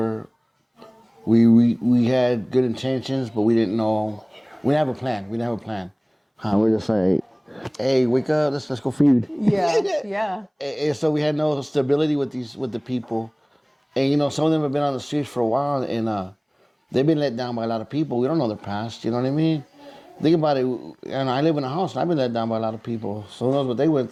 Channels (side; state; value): both; identical; correlation 1.00